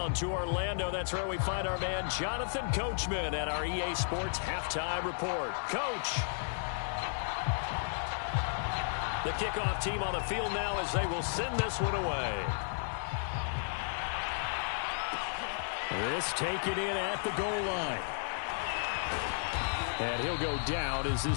to Orlando, that's where we find our man Jonathan Coachman at our EA Sports Halftime Report. Coach. The kickoff team on the field now as they will send this one away. This taken in at the goal line. And he'll go down as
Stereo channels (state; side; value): silent; right; digital silence